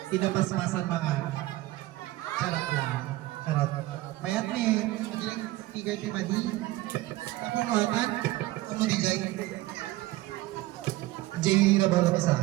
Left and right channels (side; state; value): left; quieter; 17.6 dB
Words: Pinapasmasan mga. Charot lang. Charot. Mayat ni, madilang figure ti Madi. Ako nuwatan, ako digay. Jay na ba lang isa?